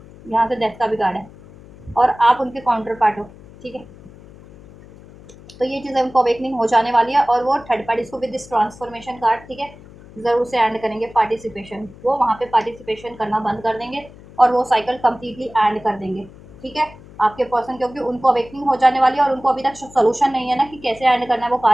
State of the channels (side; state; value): left; noise; hum, 21 dB below the sound